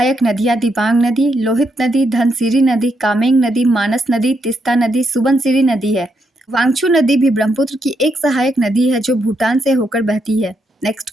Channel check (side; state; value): both; normal; correlation 0.79